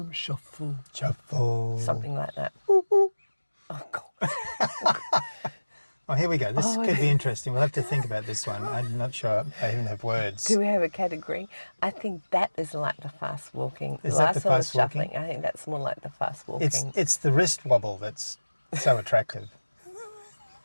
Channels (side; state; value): both; inverted; correlation -1.00